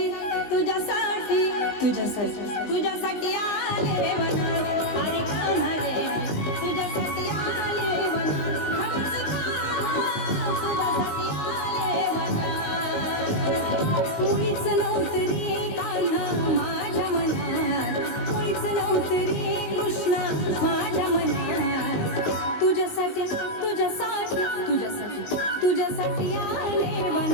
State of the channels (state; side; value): late; right; 20 ms